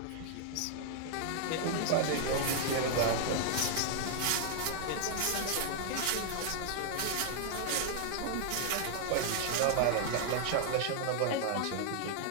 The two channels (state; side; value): different; both; correlation 0.00